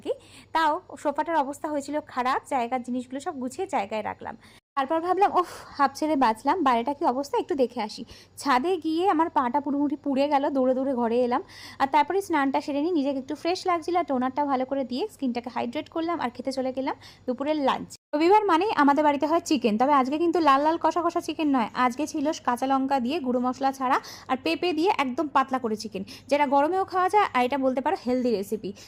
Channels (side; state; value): both; identical; correlation 1.00